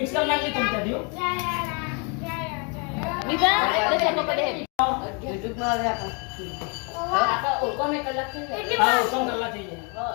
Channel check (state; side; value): quieter; right; 34.5 dB